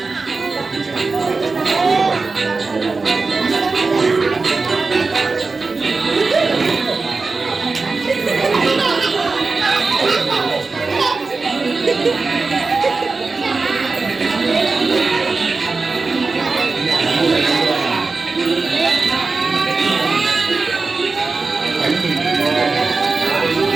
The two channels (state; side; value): quieter; left; 4.0 dB